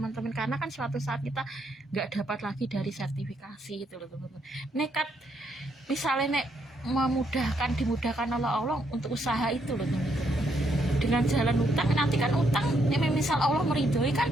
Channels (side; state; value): both; normal; correlation 0.75